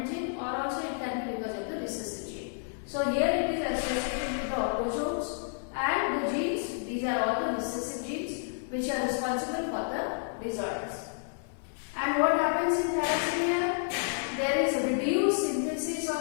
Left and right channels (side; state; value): right; silent; digital silence